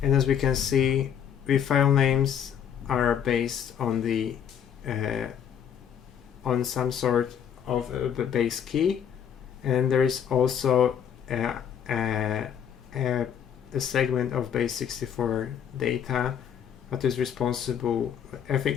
and as we can see, the file names are based on the on some sort of a base key, and there is also a segment of base64 data that is responsible. I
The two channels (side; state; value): right; quieter; 8.6 dB